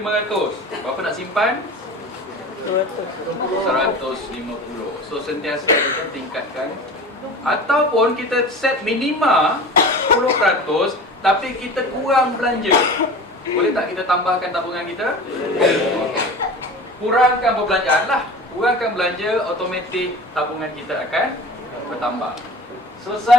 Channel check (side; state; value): both; normal; correlation 0.36